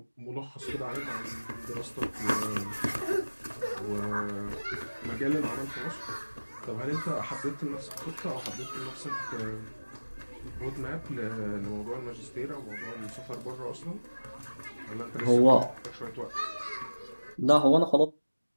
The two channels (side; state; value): both; inverted; correlation -1.00